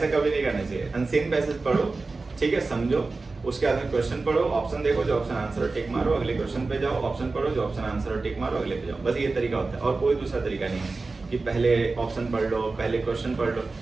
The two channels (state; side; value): quieter; left; 3.7 dB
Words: कभी नहीं करना चाहिए। अनसीन पैसेज पढ़ो, ठीक है, समझो, उसके बाद में क्वेश्चन पढ़ो, ऑप्शन देखो, जो ऑप्शन आंसर और टिक मारो, अगले क्वेश्चन पे जाओ, ऑप्शन पढ़ो, जो ऑप्शन आंसर और टिक मारो, अगले पे जाओ। बस ये तरीका होता है, और कोई दूसरा तरीका नहीं है कि पहले ऑप्शन पढ़ लो, पहले क्वेश्चन पढ़ लो।